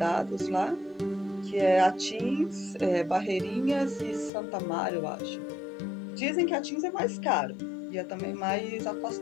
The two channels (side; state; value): right; drops out; at 4.3 s